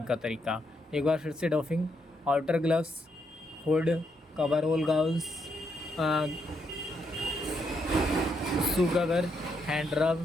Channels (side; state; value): both; normal; correlation 0.78